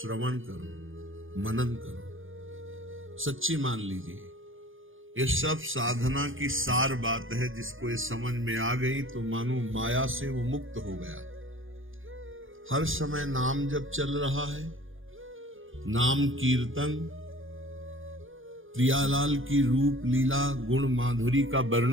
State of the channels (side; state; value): left; late; 0.58 ms